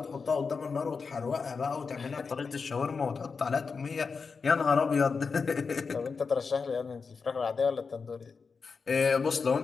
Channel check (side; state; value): right; quieter; 5.0 dB